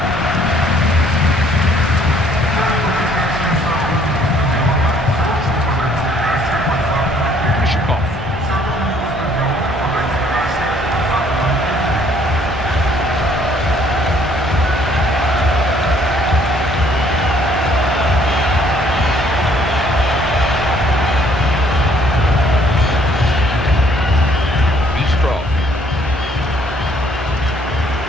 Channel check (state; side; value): normal; both; correlation 0.62